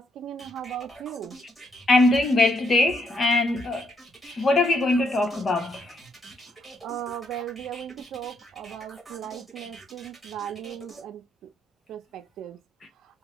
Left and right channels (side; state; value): both; normal; correlation 0.74